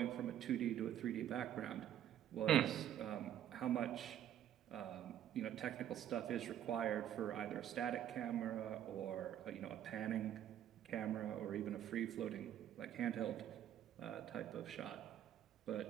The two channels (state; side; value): quieter; left; 10.9 dB